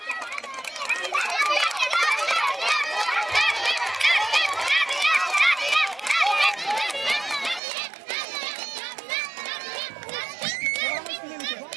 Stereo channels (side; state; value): left; drops out; at 7.6 s